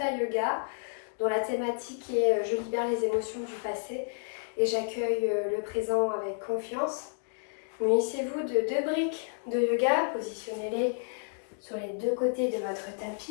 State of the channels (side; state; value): right; silent; digital silence